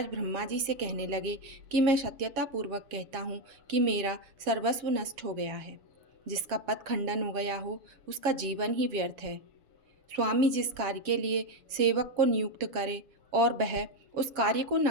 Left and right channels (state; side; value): late; left; 7.0 ms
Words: ब्रह्मा जी से कहने लगे कि मैं सत्यतापूर्वक कहता हूँ कि मेरा सर्वस्व नष्ट हो गया है। जिसका पद खंडन हो गया हो उसका जीवन ही व्यर्थ है। स्वामी जिस कार्य के लिए सेवक को नियुक्त करे और वह उस कार्य को न